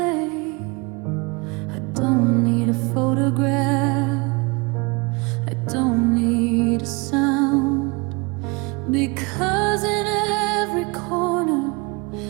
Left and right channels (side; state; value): left; quieter; 28.2 dB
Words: I don't need a photograph, I don't need a sound, because in every corner